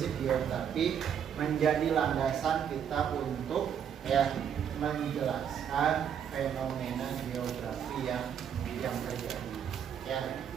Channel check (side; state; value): left; quieter; 8.4 dB